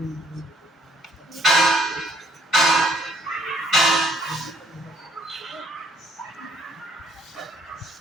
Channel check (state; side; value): normal; both; correlation 0.65